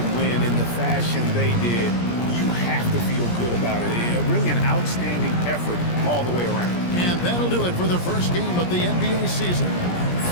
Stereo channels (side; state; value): right; late; 17 ms